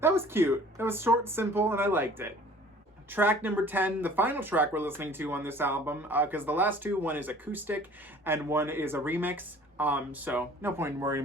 That was cute. That was short, simple, and I liked it. Track number 10, the final track we're listening to on this album, because the last two, one is acoustic and one is a remix. So no point in worrying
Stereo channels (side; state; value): both; normal; correlation 0.50